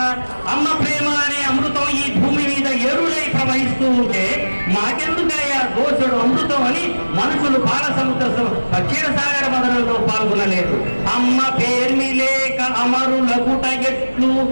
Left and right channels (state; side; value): inverted; both; correlation -1.00